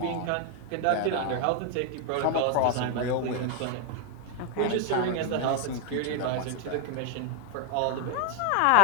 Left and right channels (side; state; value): both; different; correlation 0.01